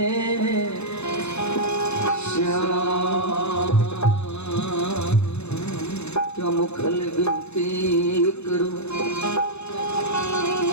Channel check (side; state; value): right; late; 0.81 ms